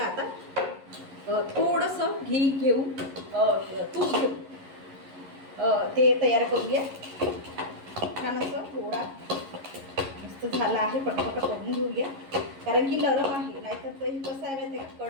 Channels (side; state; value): left; late; 11 ms